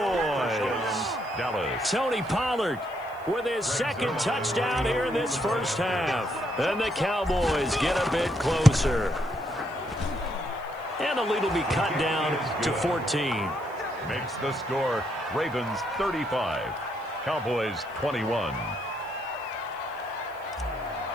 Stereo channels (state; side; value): noise; left; hiss, 28 dB below the sound